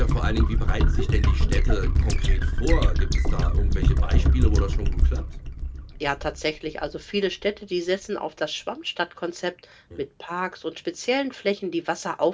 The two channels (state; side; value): identical; both; correlation 1.00